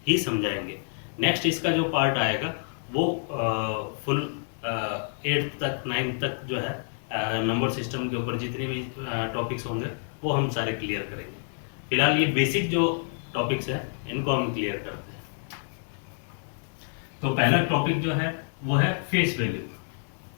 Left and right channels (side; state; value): right; silent; 59 dB below the other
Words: ही समझाएंगे। नेक्स्ट इसका जो पार्ट आएगा वो फुल एट्थ तक, नाइन्थ तक जो है नंबर सिस्टम के ऊपर जितनी भी टॉपिक्स होंगे वो हम सारे क्लियर करेंगे। फिलहाल ये बेसिक जो टॉपिक्स हैं इनको हम क्लियर करते हैं। तो पहला टॉपिक जो है वो है फेस वैल्यू।